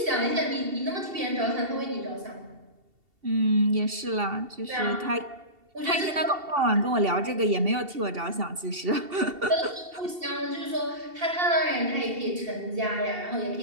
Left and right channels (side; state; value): left; late; 2.7 ms